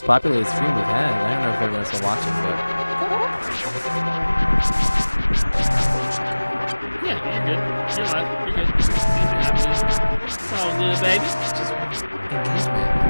populated stream we've had. I don't know if everyone's still watching, but Yeah, you're good. You're live. You're good. Things are happening. It's all good, baby. just engagement.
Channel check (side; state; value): both; inverted; correlation -1.00